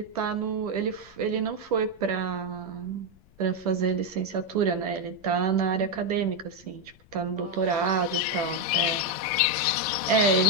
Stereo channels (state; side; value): noise; left; rumble, 27 dB below the sound